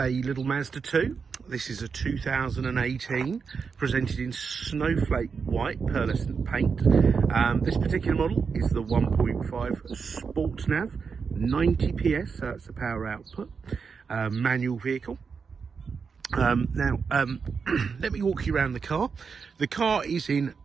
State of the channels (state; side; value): quieter; left; 5.6 dB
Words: little Mazda 2. This is a 2018, presented in Snowflake White Pearlescent paint. This particular model is the 1.5 Sport Nav, 90 PS, so that's the power output, manual vehicle. Let me walk you around the car. The car is in